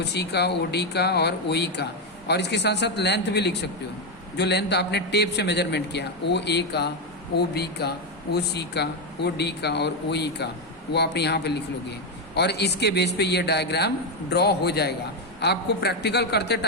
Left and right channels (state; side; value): normal; both; correlation 0.06